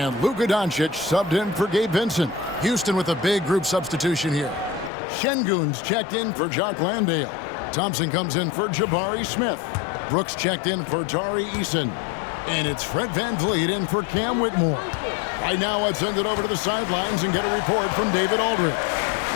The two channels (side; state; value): right; drops out; at 4.9 s